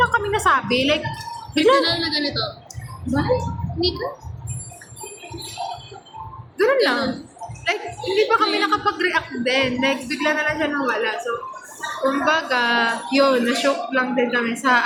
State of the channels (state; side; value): identical; both; correlation 1.00